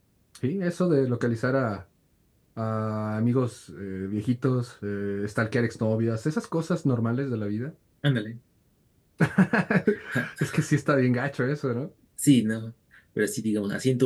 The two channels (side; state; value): both; identical; correlation 1.00